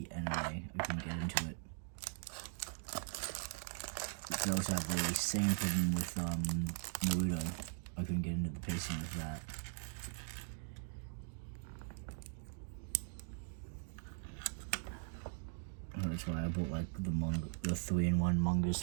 anime. I couldn't get into it. I also have the same problem with Naruto. I couldn't get into the pacing of that. That's why I bought the 3-in-1 mangas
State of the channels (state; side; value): silent; left; digital silence